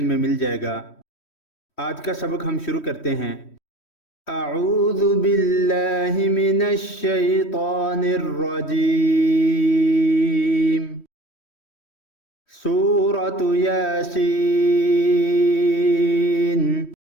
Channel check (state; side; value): late; right; 3.1 ms